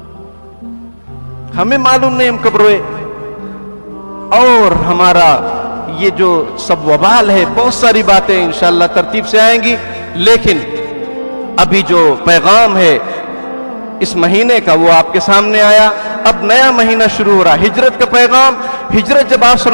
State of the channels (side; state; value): both; inverted; correlation -1.00